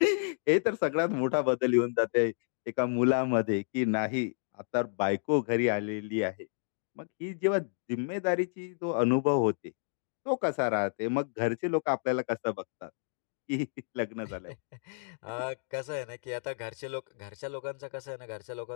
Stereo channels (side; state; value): right; silent; digital silence